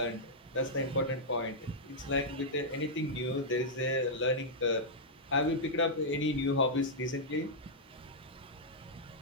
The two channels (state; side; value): normal; both; correlation -0.08